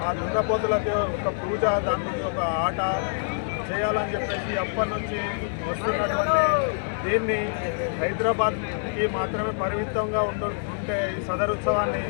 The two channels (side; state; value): right; silent; digital silence